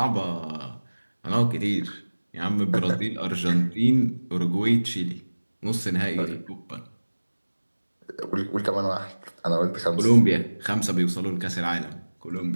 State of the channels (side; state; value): both; inverted; correlation -1.00